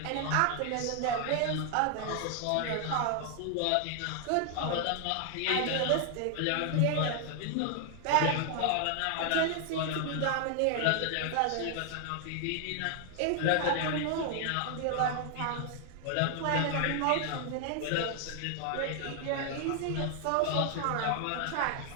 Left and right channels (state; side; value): different; both; correlation 0.00